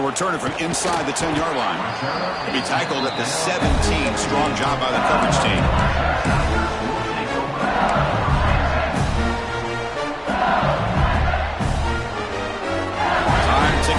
return it from inside the 10-yard line. He'll be tackled at the 17. Strong job by the coverage team. Time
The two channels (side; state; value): both; identical; correlation 1.00